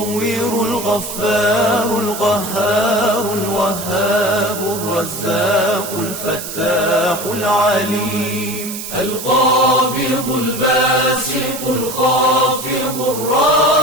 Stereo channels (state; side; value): noise; right; hiss, 8 dB below the sound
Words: الغفار القهار الوهاب الرزاق الفتاح العليم القابض الباسط الخافض